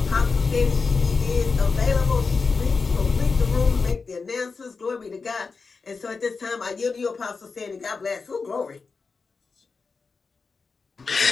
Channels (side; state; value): right; quieter; 4.6 dB